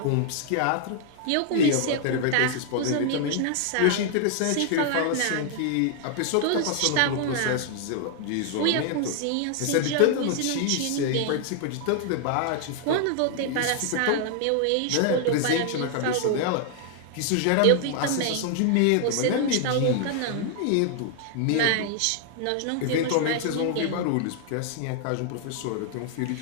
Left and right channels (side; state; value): both; different; correlation 0.00